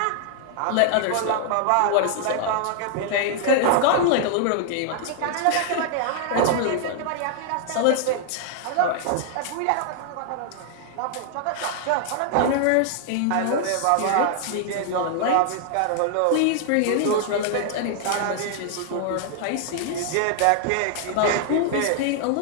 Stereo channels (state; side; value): different; both; correlation 0.00